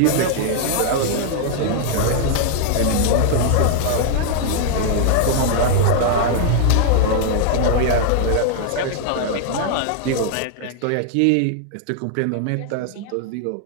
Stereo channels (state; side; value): different; both; correlation 0.00